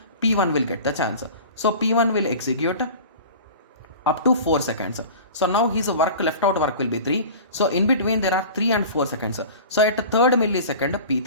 P1 will get the chance. So P1 will execute up to 4 seconds. So now his work, left out work will be 3. So in between there are 3 and 4 seconds. So at 3rd millisecond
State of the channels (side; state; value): both; inverted; correlation -0.38